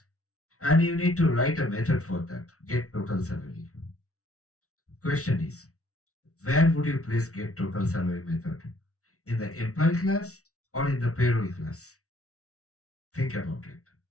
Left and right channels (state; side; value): late; right; 0.64 ms